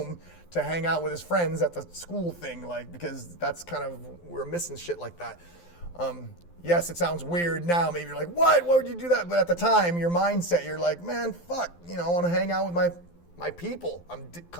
to hang out with his friends at the school thing, like because that's kind of we're missing shit like that. Yes, it sounds weird now. Maybe you're like, what? Why would you do that? But at the time, your mindset, you're like, man, fuck. I want to hang out with my people. I'm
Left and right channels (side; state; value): right; late; 12 ms